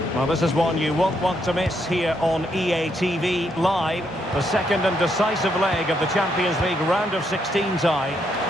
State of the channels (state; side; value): normal; both; correlation 0.76